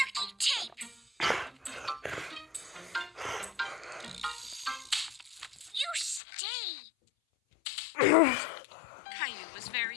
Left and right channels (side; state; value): right; drops out; at 6.2 s